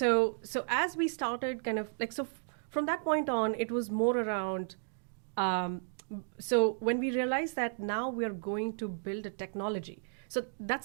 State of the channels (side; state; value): left; silent; digital silence